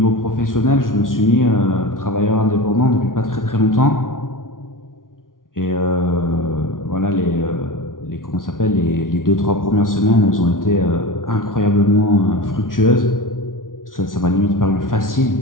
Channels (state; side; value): late; right; 0.89 ms